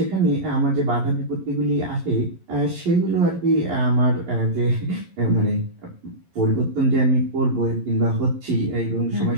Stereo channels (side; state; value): left; late; 11 ms